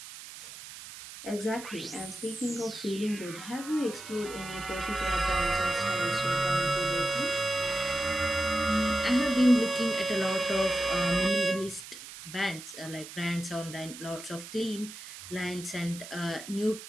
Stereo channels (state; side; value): noise; right; hiss, 13 dB below the sound